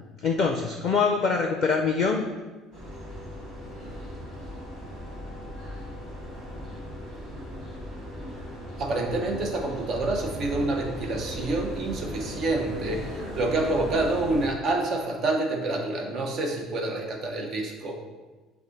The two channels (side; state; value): both; normal; correlation 0.56